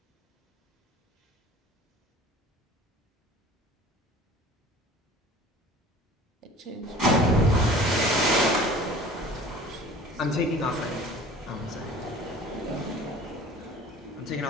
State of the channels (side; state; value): both; normal; correlation 0.45